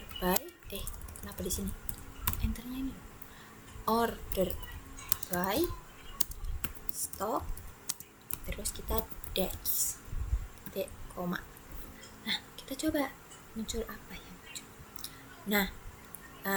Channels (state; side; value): identical; both; correlation 1.00